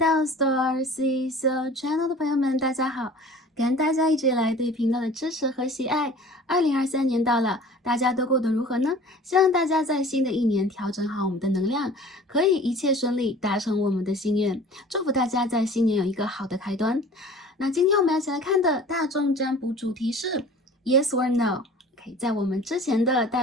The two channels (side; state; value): both; normal; correlation 0.45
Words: Star C So Channel 的朋友们，大家好！感恩大家一直以来对频道的支持和喜爱。2023年到了，大家都过得如何呢？希望大家在新的一年调整好我们的能量，可以一切顺利，达成我们的心愿。祝福大家在新年有一个好的开端。那今天我们要一起来看的大众占卜主题是 Yes or No。在我们之前的